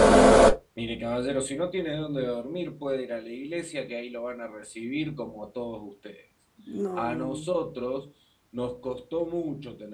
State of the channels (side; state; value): both; identical; correlation 1.00